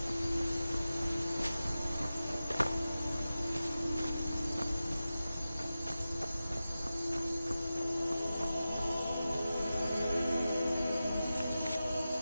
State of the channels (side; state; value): both; inverted; correlation -0.94